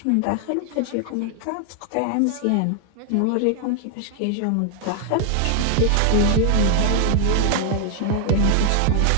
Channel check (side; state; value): both; different; correlation 0.00